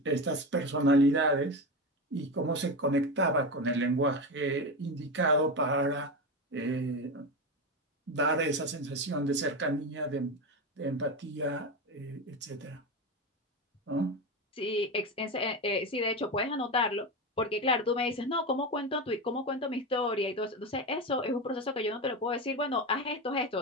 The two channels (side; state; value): both; normal; correlation 0.19